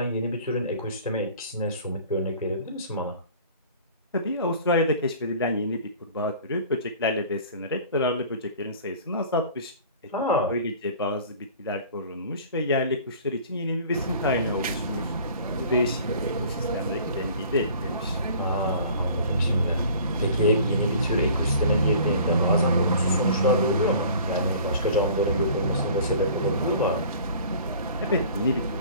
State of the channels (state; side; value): inverted; both; correlation -0.47